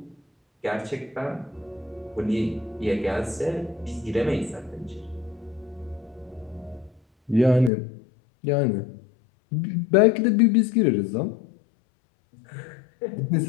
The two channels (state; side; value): drops out; right; at 7.7 s